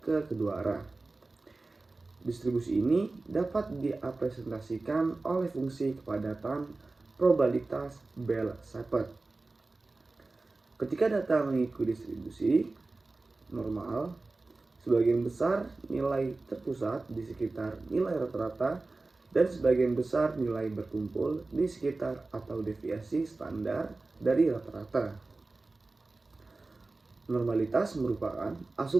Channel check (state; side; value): quieter; left; 3.4 dB